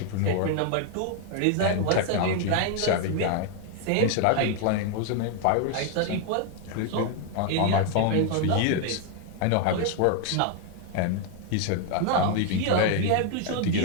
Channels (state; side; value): different; both; correlation 0.01